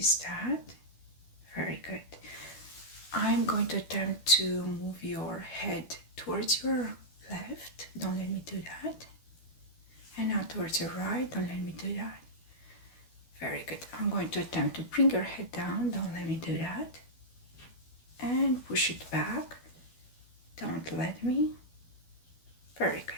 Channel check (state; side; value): late; right; 12 ms